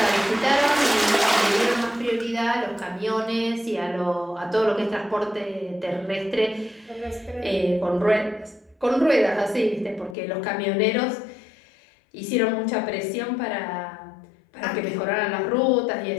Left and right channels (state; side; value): drops out; right; at 10.2 s